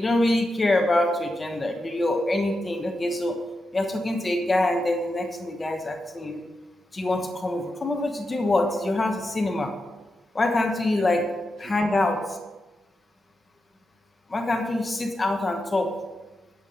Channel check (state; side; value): normal; both; correlation 0.88